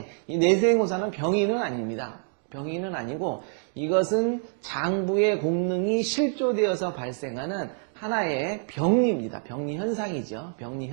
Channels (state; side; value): silent; left; 57 dB below the other